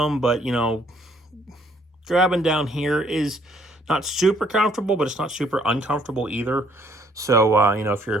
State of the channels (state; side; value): normal; both; correlation 0.64